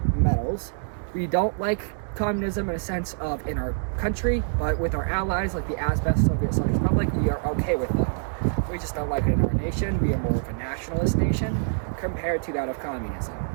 medals. We don't like communism in a sense of in our country, but with our allies like the AIRSOFT Soviet Socialist Republic, we are okay with them. We just don't like it in our nation. We are more of a nationalist nation compared to that of communism.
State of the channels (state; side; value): silent; left; digital silence